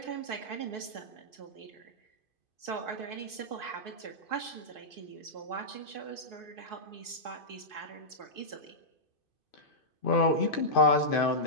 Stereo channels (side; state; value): right; late; 2.5 ms